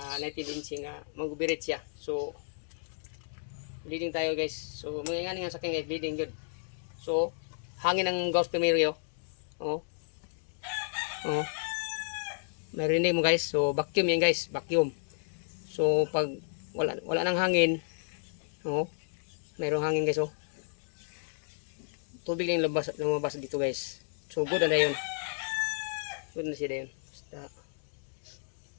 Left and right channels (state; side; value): silent; right; digital silence